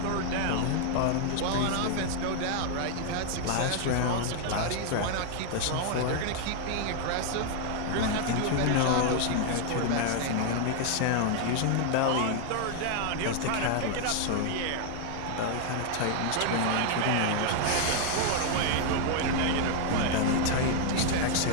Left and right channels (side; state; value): both; different; correlation 0.00